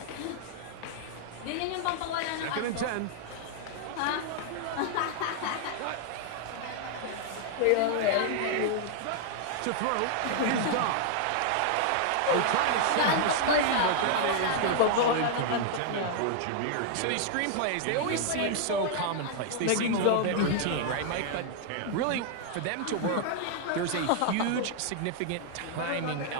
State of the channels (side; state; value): both; different; correlation 0.00